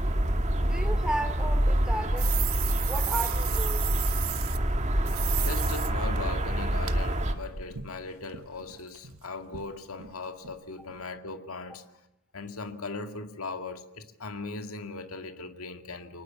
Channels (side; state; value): both; normal; correlation 0.74